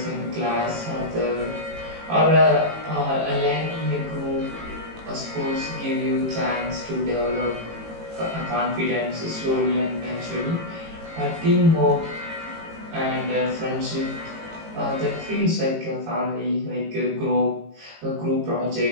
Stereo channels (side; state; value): left; late; 18 ms